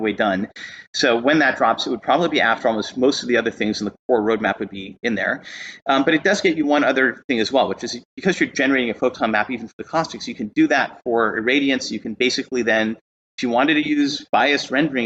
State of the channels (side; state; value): both; identical; correlation 1.00